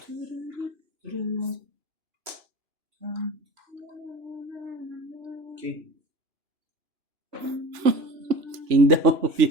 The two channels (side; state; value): left; late; 2.9 ms